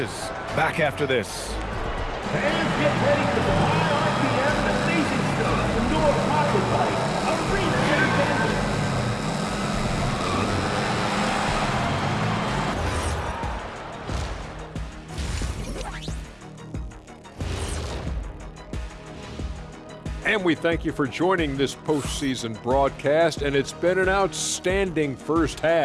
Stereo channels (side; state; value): both; identical; correlation 1.00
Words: Back after this. Fans get ready for the high RPM and amazing stuff. The Nora Pocket Bike, a reset engine. And we thank you for joining this postseason broadcast, and it's been an outstanding first